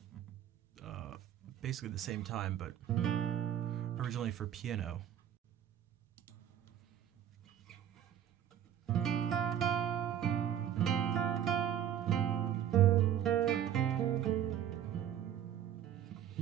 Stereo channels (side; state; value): left; quieter; 10.1 dB